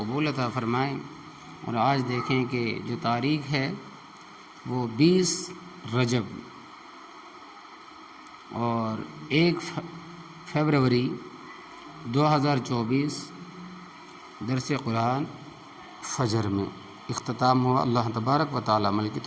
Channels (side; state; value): both; identical; correlation 1.00